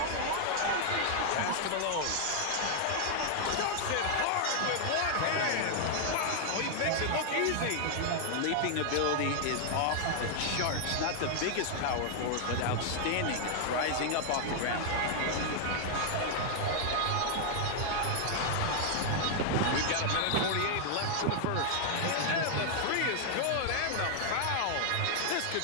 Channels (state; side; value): different; both; correlation 0.00